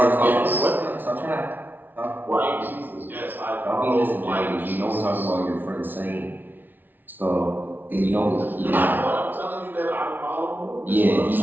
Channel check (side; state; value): left; late; 0.090 ms